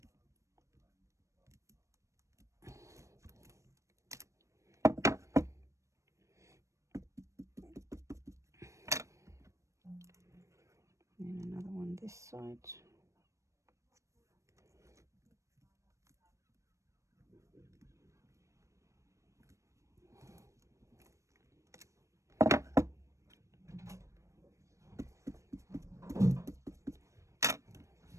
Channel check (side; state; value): left; late; 0.15 ms